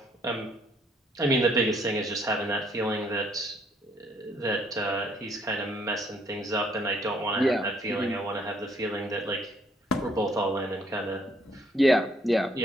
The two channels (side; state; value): both; normal; correlation 0.67